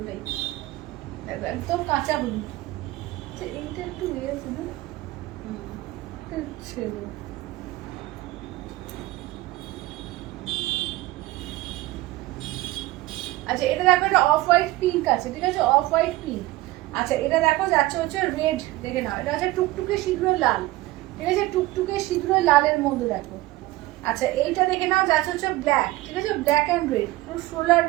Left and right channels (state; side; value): quieter; left; 18.2 dB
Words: একদম কাঁচা হলুদ। আচ্ছা এইটা একটু ইয়ে ছিল, ছিল। আচ্ছা এটা দেখো, এটা অফ হোয়াইট পিঙ্ক আছে, ঠিক আছে? Off white pink. আচ্ছা এটা দেখো যাচ্ছে হচ্ছে রেড, দেখে নাও, এটা হচ্ছে টুকটুকে সিঁদুরের লাল, ঠিক আছে? টুকটুকে সিঁদুরের লালের মধ্যে দেখো। আচ্ছা এইটা দেখে নাও, যাচ্ছে হচ্ছে ব্ল্যাক, ঠিক আছে? ব্ল্যাক অ্যান্ড রেড, পুরো